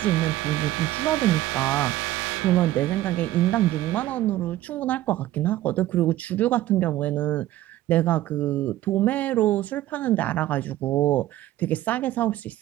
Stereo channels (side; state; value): left; quieter; 14.9 dB